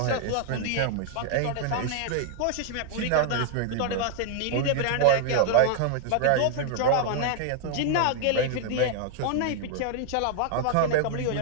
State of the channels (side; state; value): both; different; correlation 0.00